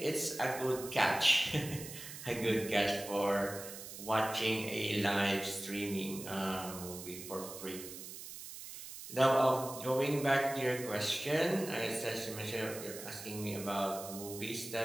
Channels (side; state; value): right; noise; hiss, 11 dB below the sound